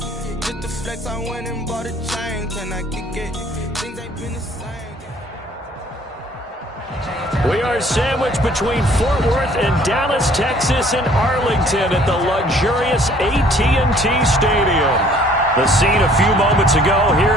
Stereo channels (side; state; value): both; normal; correlation 0.57